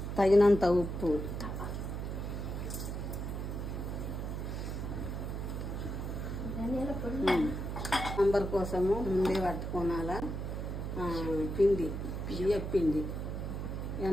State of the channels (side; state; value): right; noise; hum, 4 dB below the sound